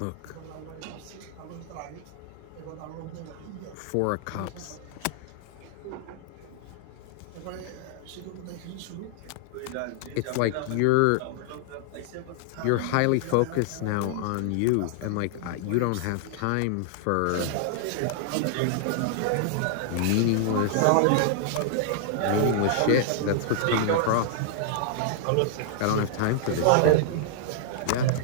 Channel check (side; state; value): both; different; correlation 0.00